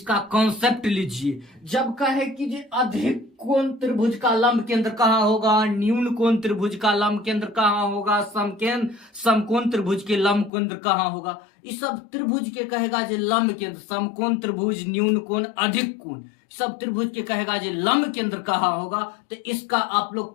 कॉन्सेप्ट लीजिए। जब कहे कि जी अधिक कोण त्रिभुज का लंब केंद्र कहाँ होगा, न्यून कोण त्रिभुज का लंब केंद्र कहाँ होगा, समकोण त्रिभुज के लंब केंद्र कहाँ होगा, इस सब त्रिभुज के कहेगा जी लंब केंद्र। समकोण त्रिभुज, न्यून कोण, अधिक कोण, सब त्रिभुज के कहेगा जी लंब केंद्र कहाँ होगा। तो इसका आप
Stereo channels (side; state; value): right; drops out; at 10.5 s